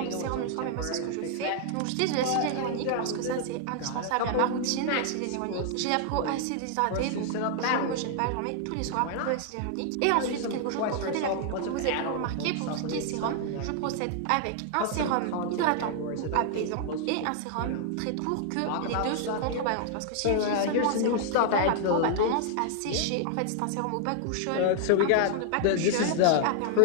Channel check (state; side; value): different; both; correlation 0.00